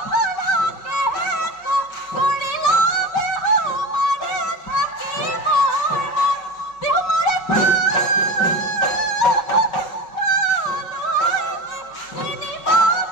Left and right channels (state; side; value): late; right; 5.4 ms